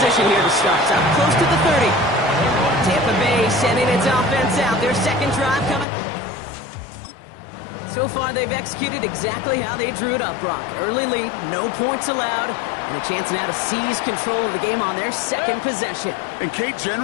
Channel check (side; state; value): right; drops out; at 5.9 s